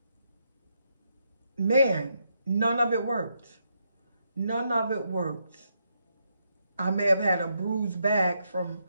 man, none of it worked. None of it worked. I may have had a bruised back from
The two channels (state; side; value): inverted; both; correlation -0.79